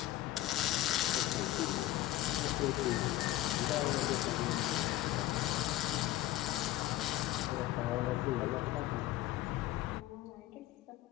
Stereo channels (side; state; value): right; quieter; 15.0 dB